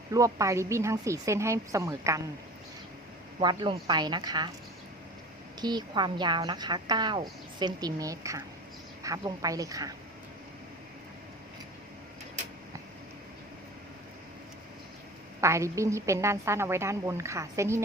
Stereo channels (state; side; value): normal; both; correlation 0.38